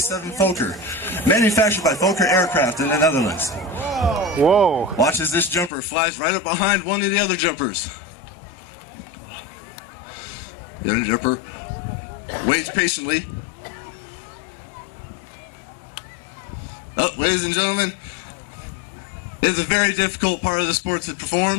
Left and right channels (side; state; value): right; drops out; at 5.7 s